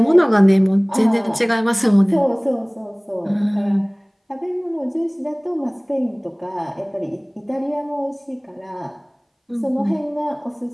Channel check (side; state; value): both; identical; correlation 1.00